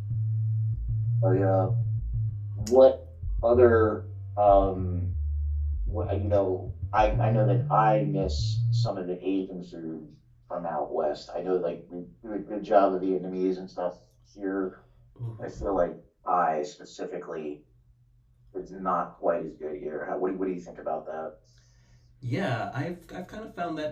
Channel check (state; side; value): identical; both; correlation 1.00